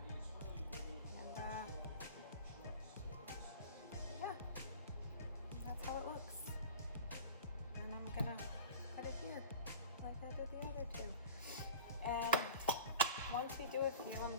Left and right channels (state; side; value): inverted; both; correlation -0.38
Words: And yeah, that's how it looks. And I'm gonna put it here, like I did the other 2. And Once we do a few, I'm